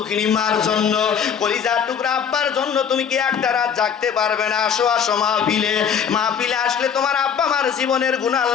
মার জন্য, কলিজার টুকরা আব্বার জন্য তুমি কি একটা রাত জাগতে পারবে না? আসো আসো মাহফিলে। মাহফিলে আসলে তোমার আব্বা মার জীবনের গুনাহ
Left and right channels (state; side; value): quieter; right; 7.5 dB